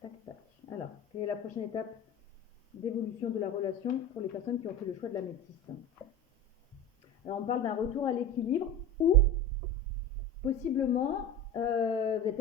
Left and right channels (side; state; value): both; normal; correlation 0.29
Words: tac, tac. Alors, quelle est la prochaine étape d'évolution de la relation pour les personnes qui ont fait le choix de l'améthyste? Alors, on parle d'un retour à l'équilibre ou possiblement, vous allez